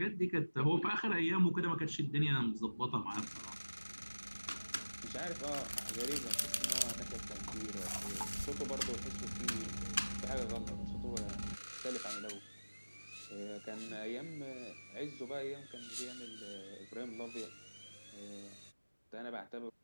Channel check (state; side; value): inverted; both; correlation -1.00